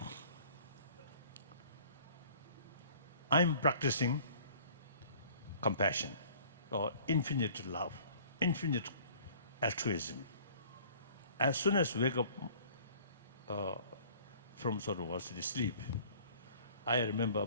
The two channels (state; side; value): inverted; both; correlation -0.51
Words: I'm practicing compassion or infinite love, infinite altruism. As soon as I wake up from sort of the sleep, I remember